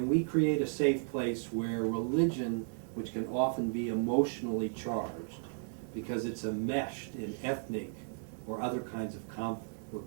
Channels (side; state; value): left; silent; digital silence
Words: we create a safe place where religion, which can often be emotionally charged because it's enmeshed in ethnic or other kinds of conflict, where